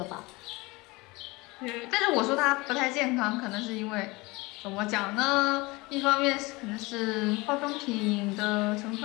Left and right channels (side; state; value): right; quieter; 23.5 dB